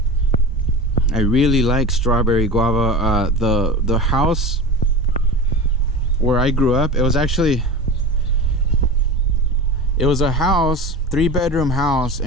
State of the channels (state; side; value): normal; both; correlation 0.31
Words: I really like strawberry guava. The house where I grew up, it was a house, 3-bedroom house